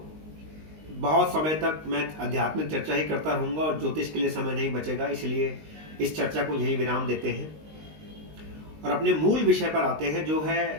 बहुत समय तक मैं आध्यात्मिक चर्चा ही करता रहूंगा और ज्योतिष के लिए समय नहीं बचेगा। इसलिए इस चर्चा को यहीं विराम देते हैं और अपने मूल विषय पर आते हैं, जो है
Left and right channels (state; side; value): late; left; 19 ms